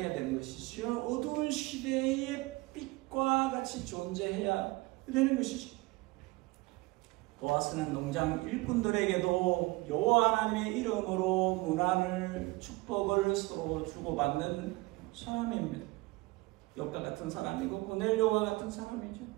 되는 것이죠. 어두운 시대의 빛과 같이 존재해야 되는 것이죠. 보아스는 농장 일꾼들에게도 여호와 하나님의 이름으로 문안을 축복을 서로 주고받는 사람입니다. 욥과 같은 사람이고 고넬료와 같은 사람이죠.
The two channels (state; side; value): quieter; left; 22.2 dB